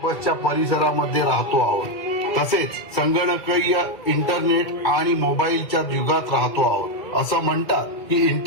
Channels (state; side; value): late; right; 2.0 ms